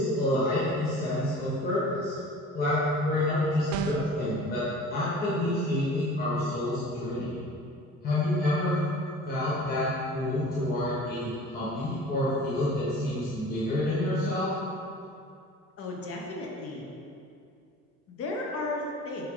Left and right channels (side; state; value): both; normal; correlation 0.42